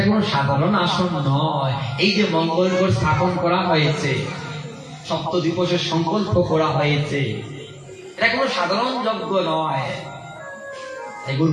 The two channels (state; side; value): identical; both; correlation 1.00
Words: কোন সাধারণ আসন নয়। এই যে মঙ্গলগড় স্থাপন করা হয়েছে, সপ্তদ্বীপের সংকল্প করা হয়েছে, এটা কোন সাধারণ যজ্ঞ নয়। এগুলো